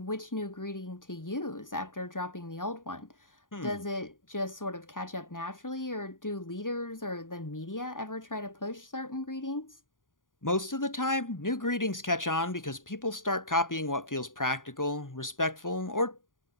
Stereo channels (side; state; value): right; late; 0.89 ms